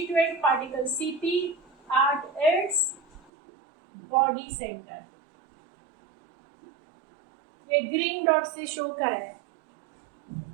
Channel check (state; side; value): drops out; left; at 3.3 s